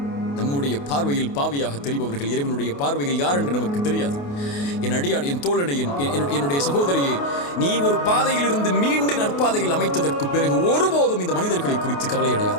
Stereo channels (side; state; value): right; late; 28 ms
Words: நம்முடைய பார்வையில் பாவியாக தெரிபவர்கள் இறைவனுடைய பார்வையில் யார் என்று நமக்கு தெரியாது. என் அடியான், என் தோழனை, என்னுடைய சகோதரியே, நீ ஒரு பாதையில் இருந்து மீண்டு நற்பாதையில் அமைத்ததற்கு பிறகு ஒருபோதும் இந்த மனிதர்களை குறித்து கவலை